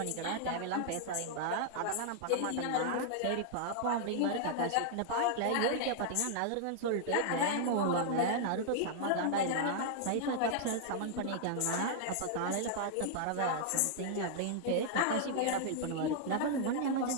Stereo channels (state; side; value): different; both; correlation -0.01